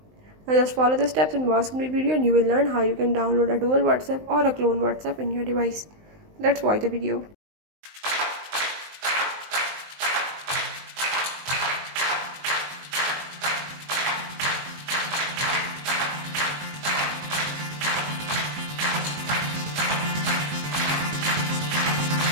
Now just follow the steps and watch complete video and you will learn how you can download a dual WhatsApp or a clone WhatsApp in your device. Let's watch the video.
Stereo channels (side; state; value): left; late; 19 ms